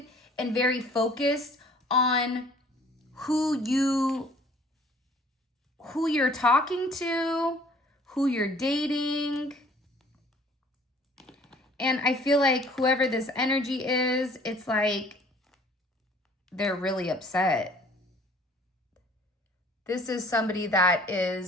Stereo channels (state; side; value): normal; both; correlation 0.54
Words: and very focused on who you're talking to, who you're dating. And I feel like whoever this energy is, it's like they're really upset. This is somebody that